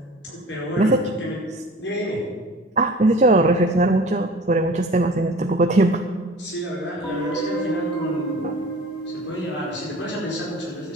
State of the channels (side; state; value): both; normal; correlation 0.42